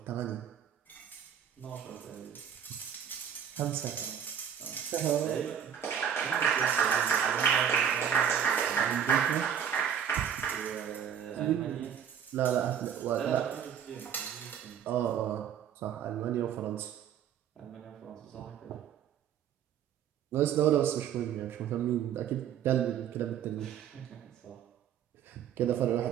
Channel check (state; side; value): quieter; left; 8.7 dB